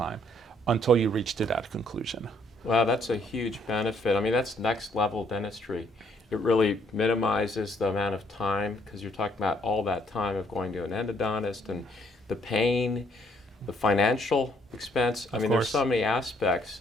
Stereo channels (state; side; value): normal; both; correlation 0.66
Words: until you reach to that conclusion. Wow, that's a huge benefit. I mean, that's next level dentistry. It really minimizes the amount of time, because you're talking about all that time of going to an endodontist and the pain, the financial expense. I mean, there's so many aspects.